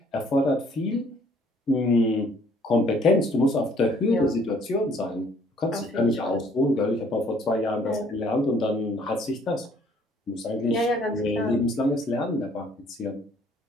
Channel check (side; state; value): both; normal; correlation 0.60